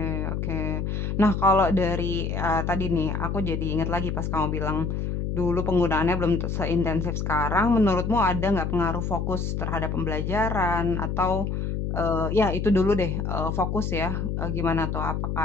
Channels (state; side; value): noise; left; hum, 2 dB below the sound